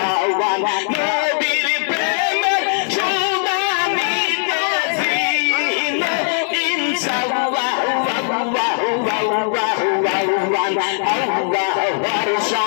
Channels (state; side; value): silent; right; digital silence